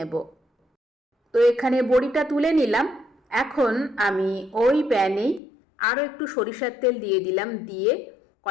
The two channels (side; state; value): right; drops out; at 5.4 s